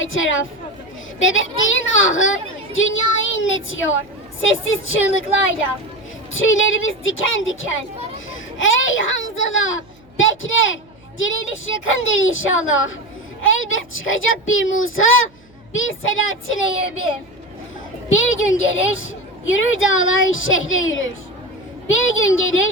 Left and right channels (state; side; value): noise; right; hum, 30 dB below the sound